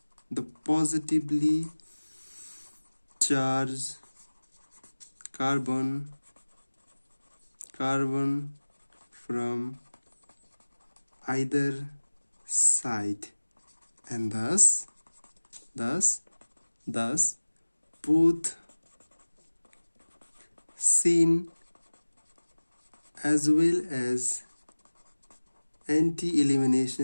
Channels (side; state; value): both; inverted; correlation -1.00